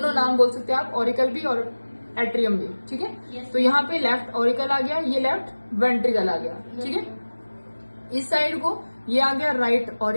नाम बोल सकते हैं आप, ऑरिकल भी और एट्रियम भी, ठीक है। तो यहाँ पे लेफ्ट ऑरिकल आ गया, ये लेफ्ट वेंट्रिकल आ गया, ठीक है। इस साइड को ये आ गया राइट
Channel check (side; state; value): both; inverted; correlation -1.00